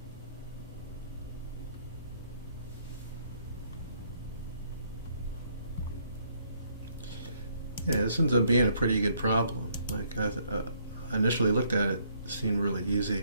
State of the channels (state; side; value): inverted; both; correlation -0.69